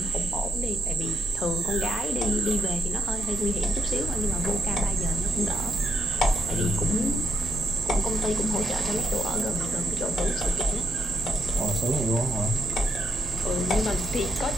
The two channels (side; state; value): both; normal; correlation 0.76